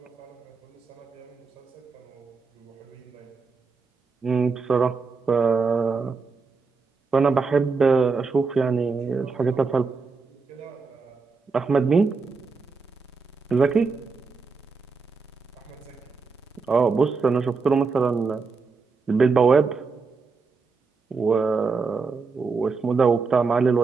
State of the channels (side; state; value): left; quieter; 4.7 dB